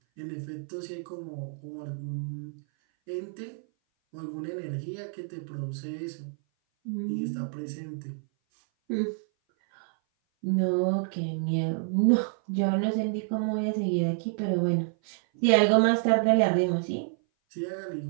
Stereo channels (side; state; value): left; silent; 57 dB below the other